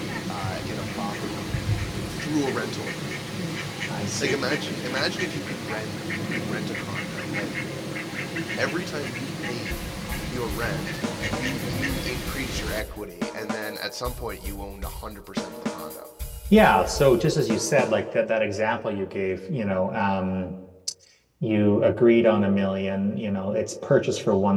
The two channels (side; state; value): both; identical; correlation 1.00